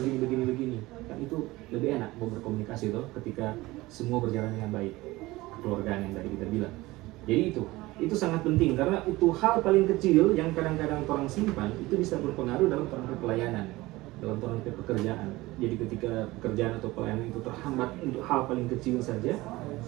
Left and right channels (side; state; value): left; quieter; 19.7 dB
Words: begini kan, itu lebih enak mau berkomunikasi ketika semua berjalan dengan baik, kekeluargaan yang tadi kita bilang. Jadi itu sangat penting karena itu hal paling kecil yang kadang-kadang orang simpan itu bisa berpengaruh dalam perangkat pelayanan, dalam perangkat pekerjaan. Jadi ketika pekerjaan atau pelayanan itu terhambat untuk hal paling kecil saja,